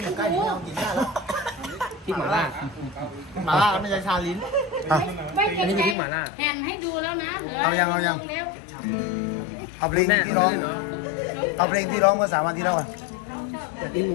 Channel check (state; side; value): drops out; right; at 6.0 s